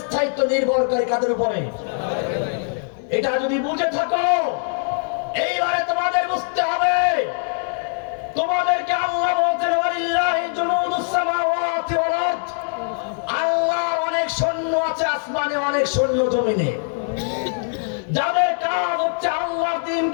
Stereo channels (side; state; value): right; silent; 60 dB below the other